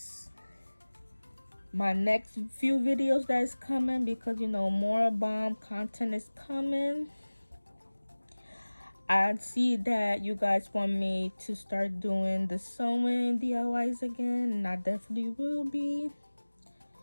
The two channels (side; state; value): both; inverted; correlation -1.00